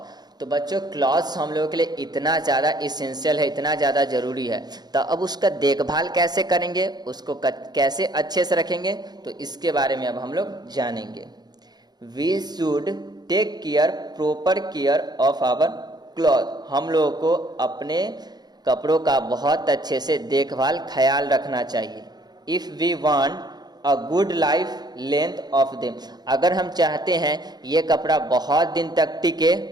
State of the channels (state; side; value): late; left; 0.20 ms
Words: तो बच्चों क्लॉथ्स हम लोगों के लिए इतना ज़्यादा इसेंशियल है, इतना ज़्यादा ज़रूरी है, तो अब उसका देखभाल कैसे करेंगे, उसको कैसे अच्छे से रखेंगे, तो इसके बारे में अब हम लोग जानेंगे। We should take care, proper care of our cloth. हम लोगों को अपने कपड़ों का बहुत अच्छे से देखभाल ख्याल रखना चाहिए। If we want a good life length of them. अगर हम चाहते हैं ये कपड़ा बहुत दिन तक टिके,